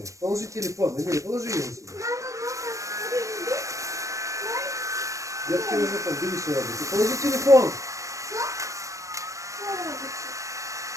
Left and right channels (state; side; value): late; left; 0.15 ms